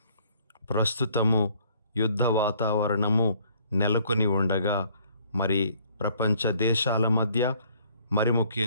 ప్రస్తుతము యుద్ధ వాతావరణము నెలకొని ఉండగా మరి ప్రపంచ దేశాల మధ్య, మరి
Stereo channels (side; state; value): both; inverted; correlation -0.61